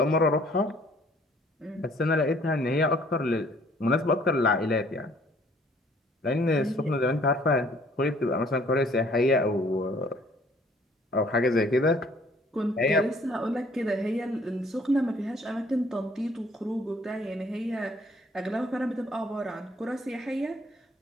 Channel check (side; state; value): both; normal; correlation 0.59